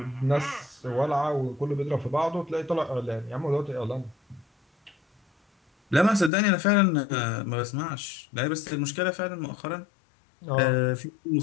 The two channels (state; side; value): drops out; right; at 6.3 s